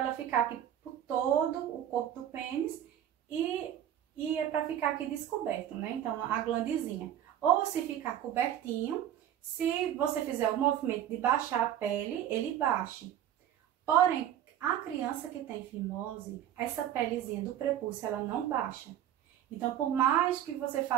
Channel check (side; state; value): left; quieter; 11.0 dB